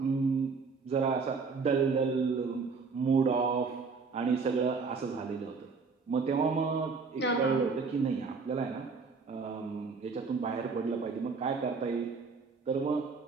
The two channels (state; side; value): quieter; left; 4.8 dB